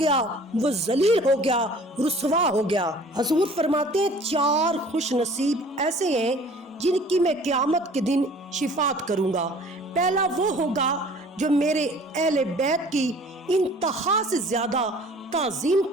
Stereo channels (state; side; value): normal; both; correlation 0.49